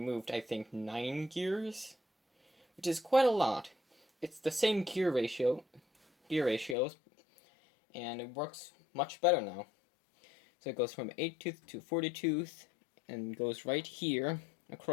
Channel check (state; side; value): drops out; right; at 6.8 s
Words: I think, 9 gears, which is quite a lot. It's the same gear ratios, and it works much better now. So it goes from 8 tooth to 40 tooth, and goes right here